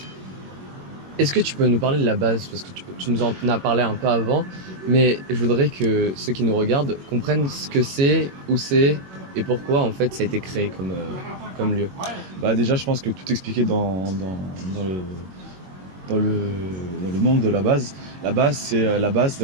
Est-ce que tu peux nous parler de la base? Parce que tu nous en as parlé un peu avant, mais je voudrais que ceux qui nous regardent comprennent ce que c'est, où c'est et pourquoi en fait ça a été créé comme lieu. Déjà, je pense que tout expliqué dans le nom de la base. La base, c'est la base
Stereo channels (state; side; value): late; left; 21 ms